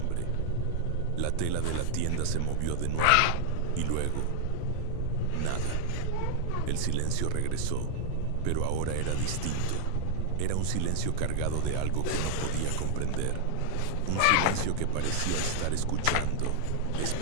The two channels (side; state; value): both; different; correlation 0.00